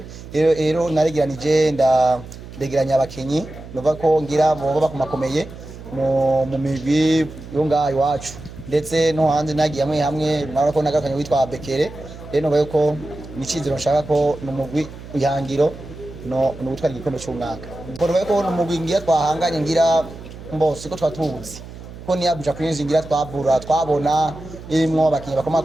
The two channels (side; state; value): right; noise; hum, 15 dB below the sound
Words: rero naregeranije ndegeranya abakinyi nubaye ko ngira boba bakumakomeye mu migwi yo ngaho iwacu ndetse no hanze nagiye hamwe nabona ko nagakanye witwa Bekere rero bayo ko nicizero nshaka ko numugwi ihangiro no gutwara igikombe cy'umwaka mbona bayo ko numugwi ngira twahanganye ngira mbose ko twatubuzi ko ni Abuja Queens ngira twabona imwo abakinyi